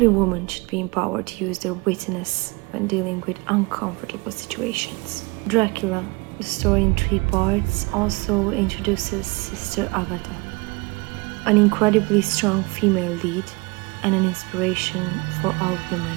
woman should be empowered to use their wittiness when dealing with uncomfortable situations. Dracula, the story in 3 parts, also introduces Sister Agatha, an incredibly strong female lead and an inspiration for all women.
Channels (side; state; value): left; quieter; 26.5 dB